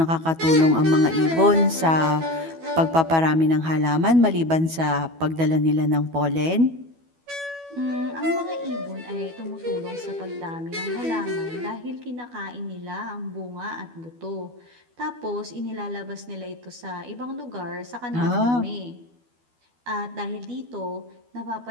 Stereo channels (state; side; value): late; left; 12 ms